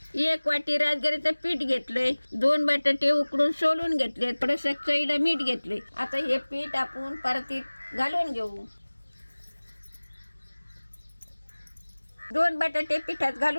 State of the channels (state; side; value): inverted; both; correlation -1.00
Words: 1 वाटी राजगिरीचं पीठ घेतलंय, 2 बटाटे उकडून सोलून घेतले, थोडंसं चवीला मीठ घेतले। आता हे पीठ आपण परतीत घालून घेऊ। 2 बटाटे पिठात